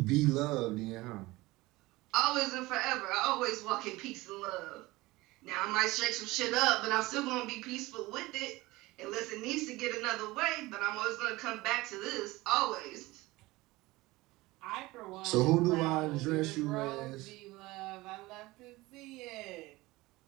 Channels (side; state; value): left; quieter; 20.2 dB